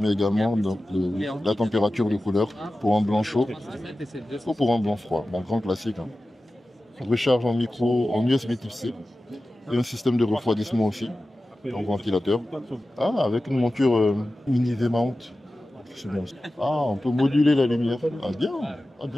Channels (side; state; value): both; normal; correlation 0.95